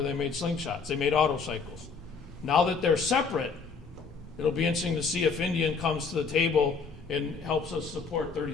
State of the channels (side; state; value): right; quieter; 5.1 dB